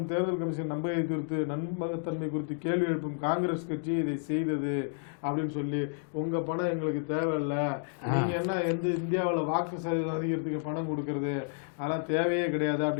தேர்தல் கமிஷன் நம்பகத்தன்மை குறித்து கேள்வி எழுப்பும் காங்கிரஸ் கட்சி இதை செய்தது அப்படின்னு சொல்லி, உங்க பணம் எங்களுக்கு தேவையில்லை, நீங்க என்ன இந்தியாவில் வாக்கு சதவீதம் அதிகரித்துக்கு பணம் கொடுக்கறது அதெல்லாம் தேவையே கிடையாது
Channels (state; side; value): silent; right; digital silence